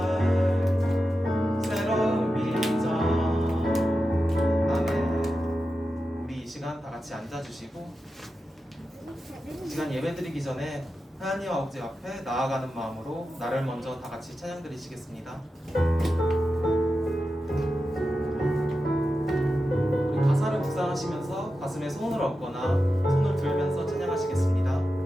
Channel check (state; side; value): normal; both; correlation 0.91